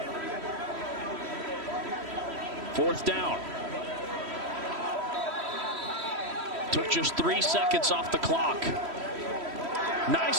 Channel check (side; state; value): left; late; 3.1 ms